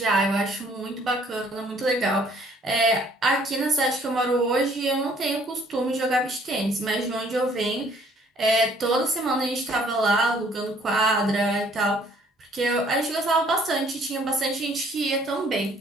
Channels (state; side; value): normal; both; correlation 0.60